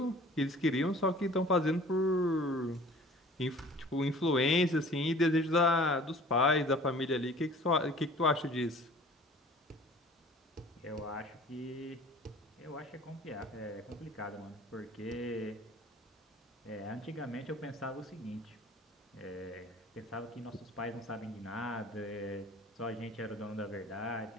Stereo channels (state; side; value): normal; both; correlation 0.48